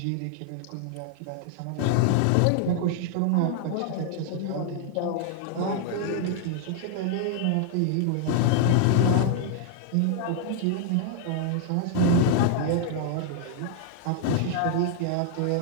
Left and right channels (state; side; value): different; both; correlation 0.00